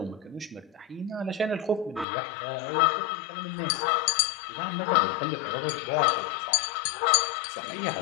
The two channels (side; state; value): right; drops out; at 2.1 s